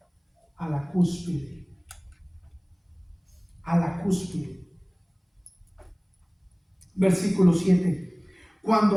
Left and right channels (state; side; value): identical; both; correlation 1.00